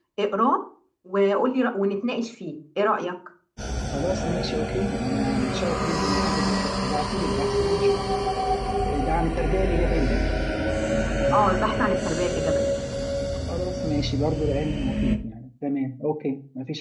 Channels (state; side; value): identical; both; correlation 1.00